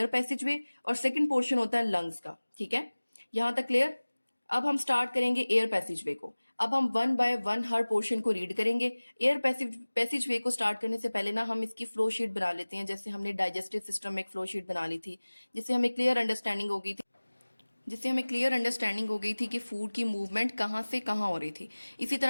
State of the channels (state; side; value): inverted; both; correlation -1.00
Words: पैसेजवे और सेकंड पोर्शन होता है लंग्स का। ठीक है। यहां तक क्लियर? अब हम स्टार्ट करेंगे एयर पैसेजवे को। अब हम one by one her portion को रीड करेंगे। एयर पैसेजवे को स्टार्ट करने से पहले ना हम इसकी फ्लो शीट बना लेते हैं, जैसे हमने डाइजेस्टिव सिस्टम में एक फ्लो शीट बना ली थी, जिससे हमें क्लियर अंडरस्टैंडिंग हो गई थी कि फूड की मूवमेंट कहाँ से कहाँ हो रही थी। इसी